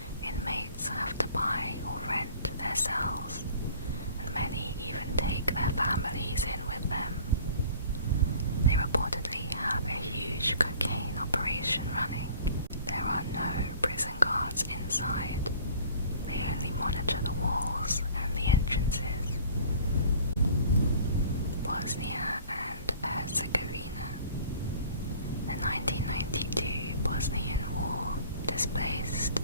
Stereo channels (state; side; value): inverted; both; correlation -0.49